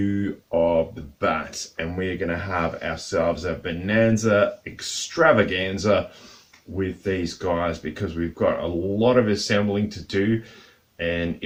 of the bat, and we're going to have ourselves a Bonanza Extravaganza with these guys because we've got a lot of assembling to do. And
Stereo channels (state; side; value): identical; both; correlation 1.00